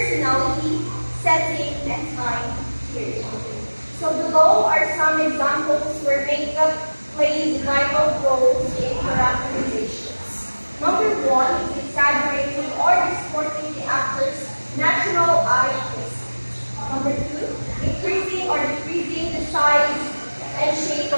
setting, and time period. So below are some examples where makeup plays vital roles in characterizations. Number one is exaggerating or distorting the actor's natural eye face. Number two, increasing or decreasing the size and shape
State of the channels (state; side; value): inverted; both; correlation -1.00